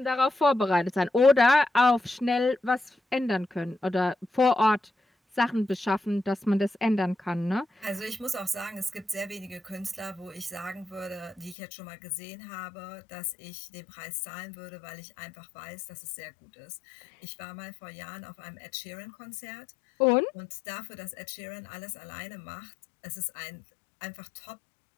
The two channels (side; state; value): right; drops out; at 11.6 s